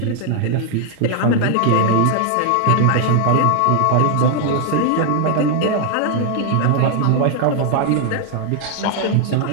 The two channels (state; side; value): different; both; correlation 0.00